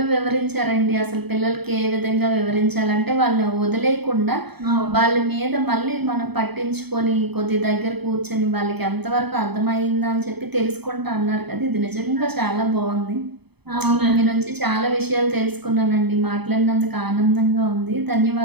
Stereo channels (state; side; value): late; left; 0.98 ms